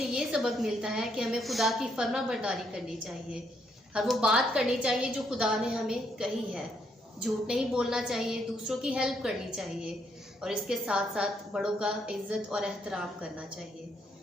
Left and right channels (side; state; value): both; normal; correlation 0.74